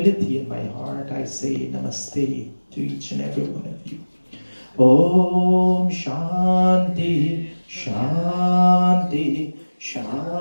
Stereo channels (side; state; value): both; inverted; correlation -1.00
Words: in my heart, I say namaste to each and every one of you. Om Shanti, Shanti,